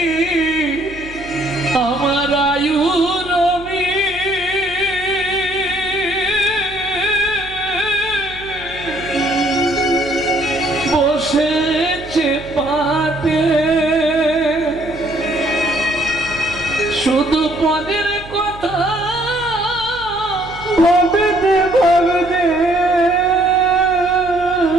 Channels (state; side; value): noise; right; hum, 17 dB below the sound